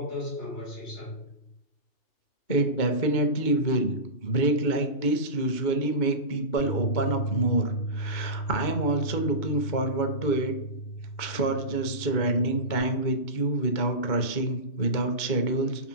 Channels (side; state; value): right; late; 2.2 ms